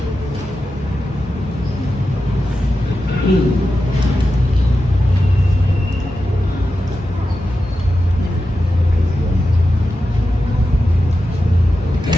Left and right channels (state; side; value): normal; both; correlation 0.91